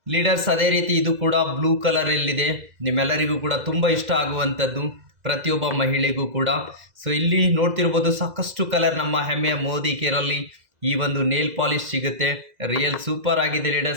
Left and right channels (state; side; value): late; left; 2.0 ms